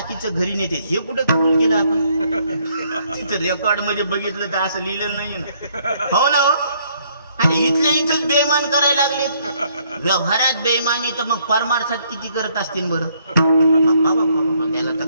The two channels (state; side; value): inverted; both; correlation -0.68